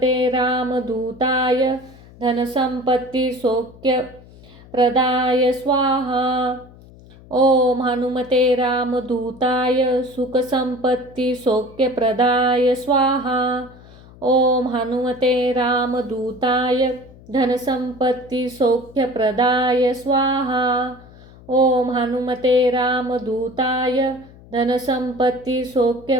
रामदूताय धनसंपत्ति सौख्यप्रदाय स्वाहा। ओम हनुमते रामदूताय सुखसंपत्ति सौख्यप्रदाय स्वाहा। ओम हनुमते रामदूताय धनसंपत्ति सौख्यप्रदाय स्वाहा। ओम हनुमते रामदूताय धनसंपत्ति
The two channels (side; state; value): left; noise; hum, 22 dB below the sound